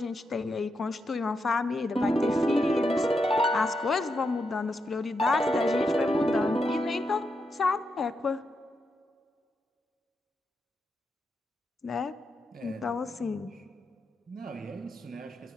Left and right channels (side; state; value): both; normal; correlation 0.84